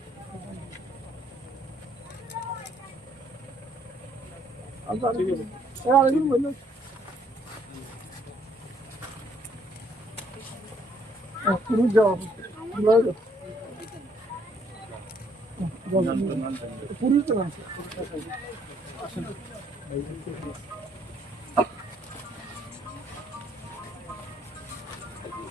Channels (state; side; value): normal; both; correlation 0.67